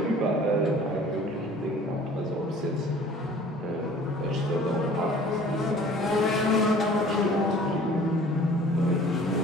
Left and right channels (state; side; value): normal; both; correlation 0.49